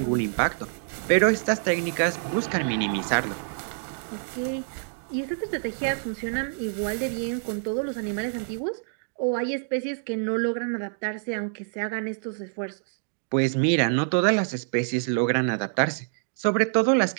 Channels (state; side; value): silent; left; digital silence